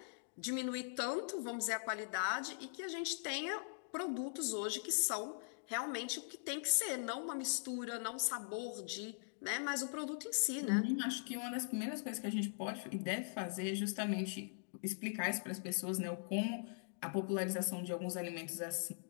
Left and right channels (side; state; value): right; silent; digital silence